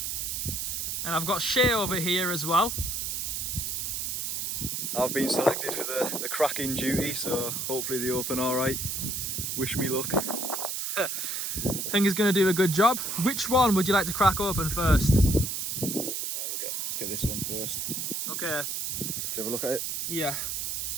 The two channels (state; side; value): noise; right; hiss, 2 dB below the sound